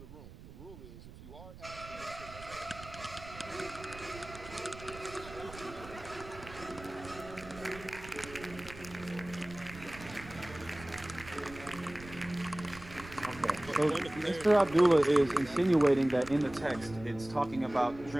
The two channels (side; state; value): right; noise; rumble, 16 dB below the sound